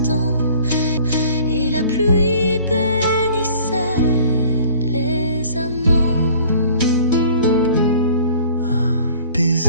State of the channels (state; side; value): inverted; both; correlation -0.51